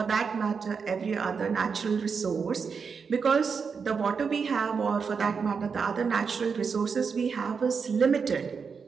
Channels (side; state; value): left; quieter; 5.7 dB